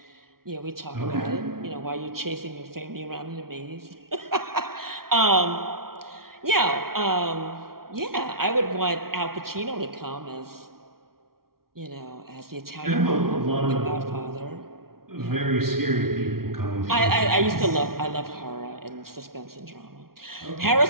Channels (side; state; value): left; late; 0.93 ms